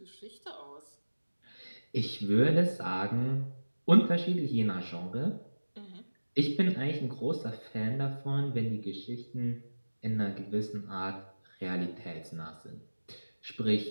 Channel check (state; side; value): inverted; both; correlation -1.00